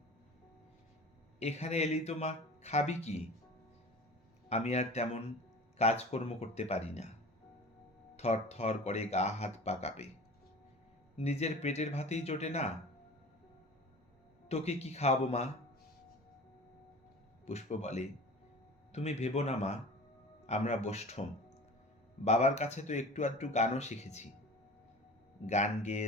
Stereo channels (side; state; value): both; normal; correlation 0.39